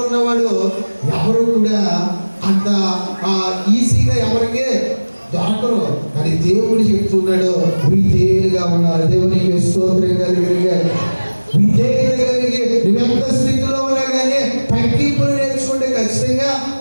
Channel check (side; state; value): both; inverted; correlation -1.00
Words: ఉన్నవాడు ఎవరు కూడా అంత ఈజీగా ఎవరికి దొరకరు. కానీ దేవుడు చెప్తున్నాడు, విధేయులుగా ఉన్నారు. దేవునికి స్తోత్రం కలిగి విధేయులు కలిగి నువ్వెంత స్థితిలో ఉన్నా కానీ తగ్గింపులు నేర్చుకుంటే ఖచ్చితంగా